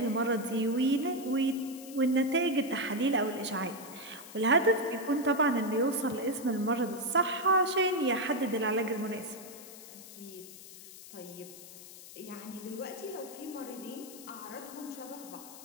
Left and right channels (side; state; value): left; noise; hiss, 16 dB below the sound